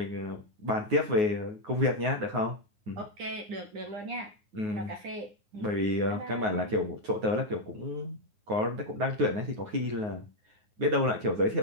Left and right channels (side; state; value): left; late; 9.5 ms